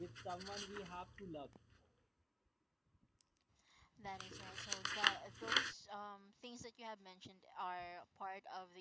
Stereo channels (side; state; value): both; identical; correlation 1.00